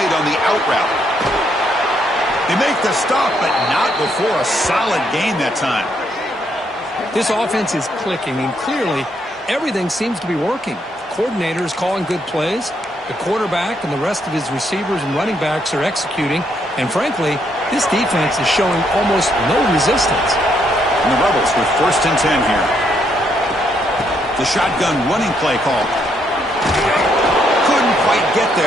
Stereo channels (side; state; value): both; normal; correlation 0.74